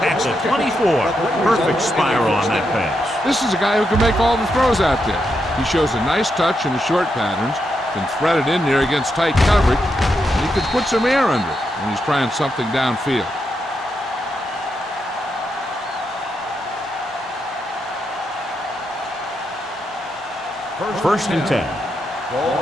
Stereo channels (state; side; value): normal; both; correlation 0.83